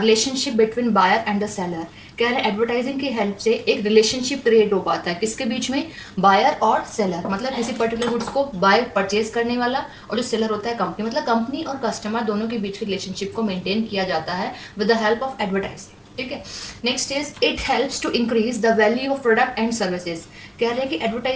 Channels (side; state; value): both; identical; correlation 1.00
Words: between buyer and the seller. कह रहे हैं एडवर्टाइजिंग की हेल्प से एक रिलेशनशिप क्रिएट हो पाता है किसके बीच में, बायर और सेलर. मतलब किसी पर्टिकुलर गुड्स को बाय परचेज करने वाला और जो सेलर होता है कंपनी, मतलब कंपनी और कस्टमर दोनों के बीच के रिलेशनशिप को मेंटेन किया जाता है with the help of advertising. ठीक है. Next is it helps to increase the value of product and services. कह रहे हैं कि